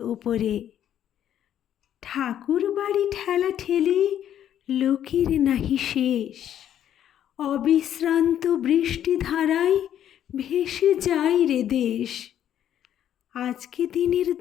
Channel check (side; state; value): right; quieter; 10.5 dB